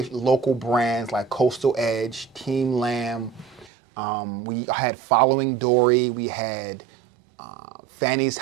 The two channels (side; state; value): left; drops out; at 3.7 s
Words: brands like Coastal Edge, Team Lamb. We had Following Dory, we had Fanny's